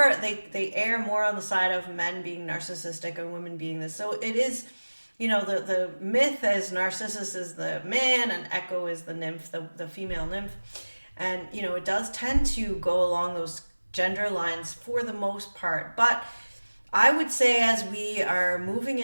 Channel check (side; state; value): both; inverted; correlation -1.00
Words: they err more on the side of men being narcissistic and women being this. So it is, the myth is Narcissus is the man and Echo is the nymph, the female nymph. And, it does tend to go along those gender lines for the most part. But I would say as we are moving